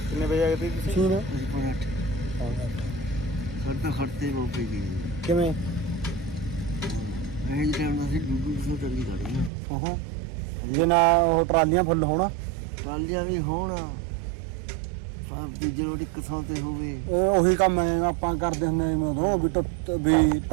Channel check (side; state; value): left; drops out; at 9.5 s